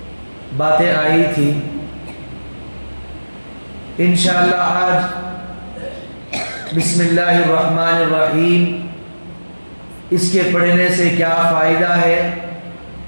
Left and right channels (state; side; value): inverted; both; correlation -1.00